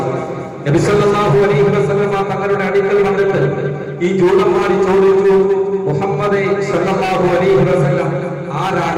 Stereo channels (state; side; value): identical; both; correlation 1.00